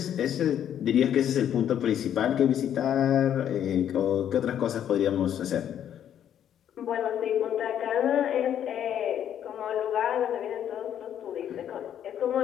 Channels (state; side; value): quieter; right; 9.9 dB